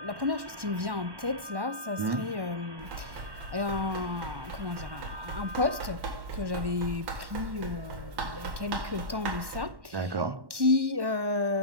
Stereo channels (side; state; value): left; late; 1.1 ms